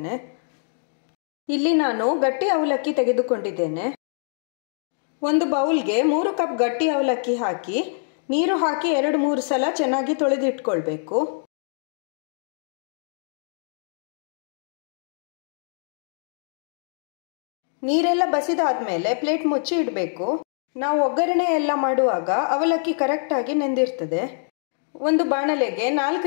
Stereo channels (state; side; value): silent; right; digital silence